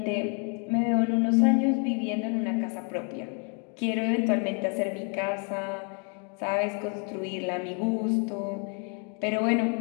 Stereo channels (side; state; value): right; quieter; 38.3 dB